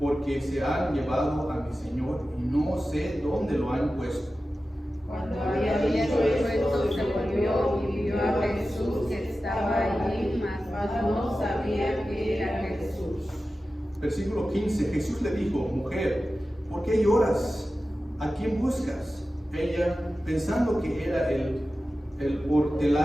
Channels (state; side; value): normal; both; correlation 0.94